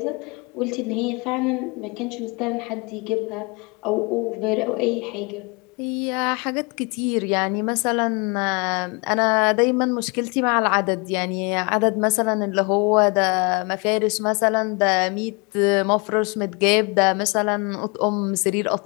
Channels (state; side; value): quieter; right; 30.3 dB